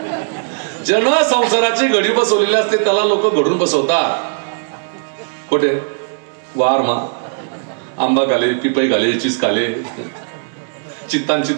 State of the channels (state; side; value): silent; left; digital silence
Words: जन संसाराची घडी बसवलेली असते त्याला लोक घडून बसवतात. कुठे? वार मा आंबा घाले, पिपई घाले, चिस घाले, चित्तान